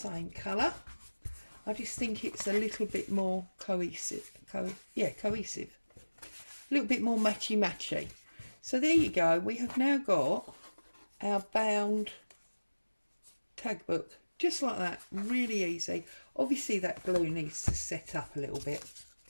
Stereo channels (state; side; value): inverted; both; correlation -1.00